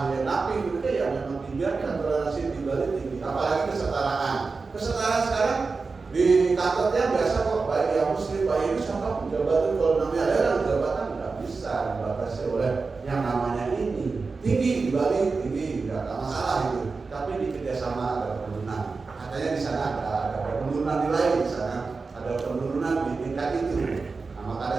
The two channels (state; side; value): quieter; left; 4.3 dB